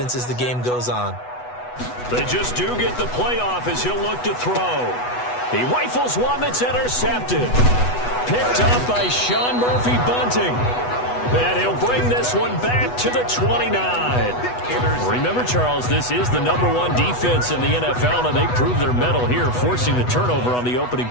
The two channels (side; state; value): right; late; 8.1 ms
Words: as the game goes on. They just do get the play off as he'll look to throw. He rifles one that's intercepted. Picked up by Sean Murphy-Bunting. And he'll bring this one back to the 29. Remember, Charles, this is the #1 defense in the NFL, and they prove their mettle here, forcing the turnover on the opening